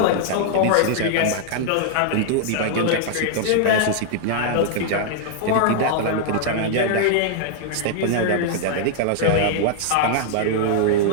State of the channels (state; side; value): different; both; correlation -0.01